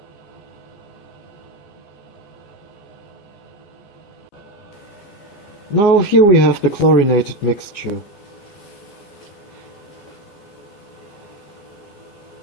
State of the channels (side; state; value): right; late; 14 ms